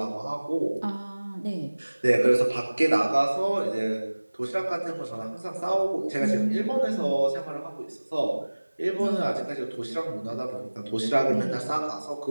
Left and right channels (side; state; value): both; inverted; correlation -1.00